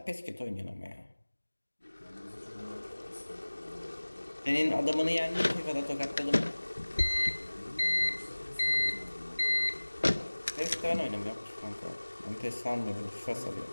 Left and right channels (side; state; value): both; inverted; correlation -1.00